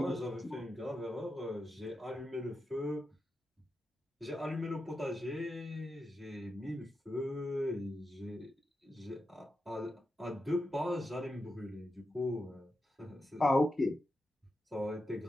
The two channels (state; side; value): normal; both; correlation 0.88